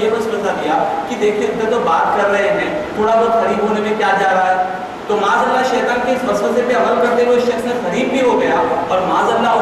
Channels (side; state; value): both; identical; correlation 1.00